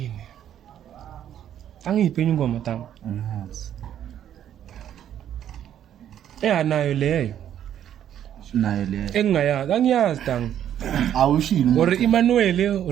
Angiphe ingoma tang. Nayo leyo. Nayo le. Engayazi, angiyazi tang. Awushilo. Or Emmanuel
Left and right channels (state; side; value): quieter; left; 10.4 dB